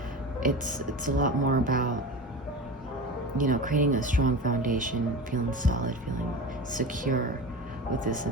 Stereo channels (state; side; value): normal; both; correlation 0.29